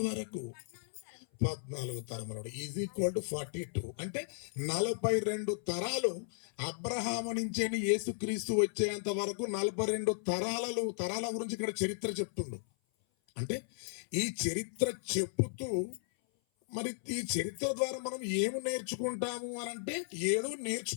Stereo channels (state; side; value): silent; right; 54 dB below the other